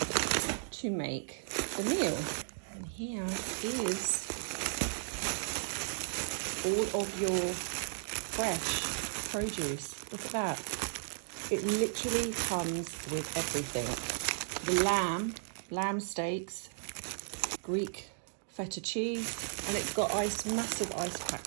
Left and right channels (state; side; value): silent; left; digital silence